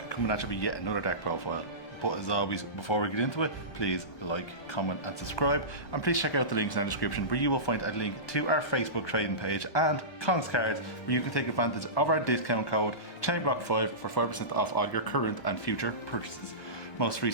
coming at you with yet another deck profile. But as always, before we get into it, please like, comment and subscribe, and please check out the links in the description where you will find a link to our Facebook trading page and Kongs Cards, where you can take advantage of our discount code ChainBlock5 for 5% off all your current and future purchases. Most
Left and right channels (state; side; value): late; right; 1.3 ms